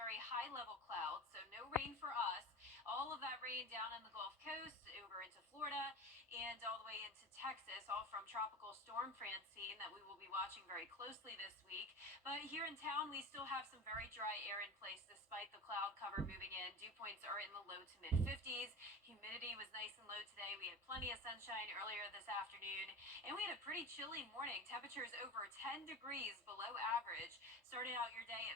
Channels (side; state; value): both; normal; correlation 0.31